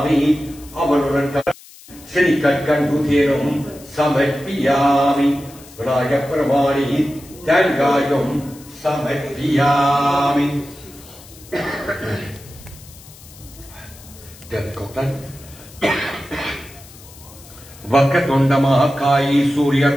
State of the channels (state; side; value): noise; left; hiss, 21 dB below the sound